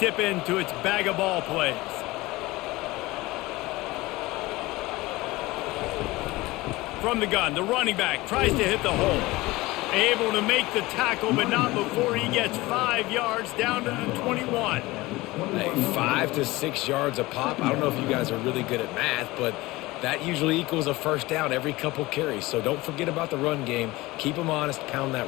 into its bag of ball plays. From the gun, the running back tries to hit the hole. Able to make the tackle, but not before he gets 5 yards down to the 21. Hey, 5 to 6 yards a pop. I don't know if you guys are really good at math, but that usually equals a first down every couple carries. So don't forget about the run game. Keep them honest, pound that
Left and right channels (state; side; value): quieter; right; 20.3 dB